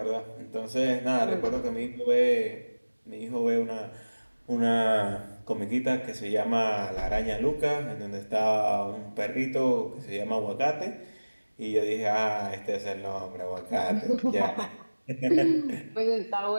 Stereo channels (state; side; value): inverted; both; correlation -1.00